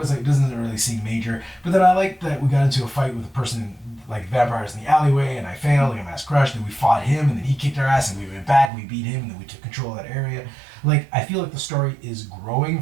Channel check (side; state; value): left; drops out; at 8.7 s